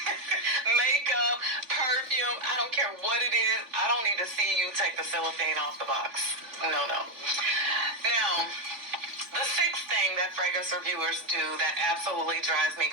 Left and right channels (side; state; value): left; late; 3.5 ms